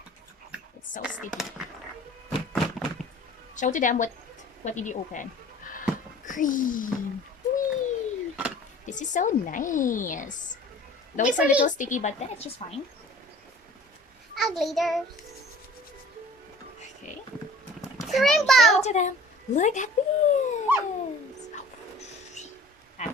It's so sticky. Show to them what did you open. Green. Whee! This is so nice. Though it's a little sticky, but then it's just fine. A glitter. Okay. The rainbow. Show to them. Look at this.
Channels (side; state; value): both; normal; correlation 0.47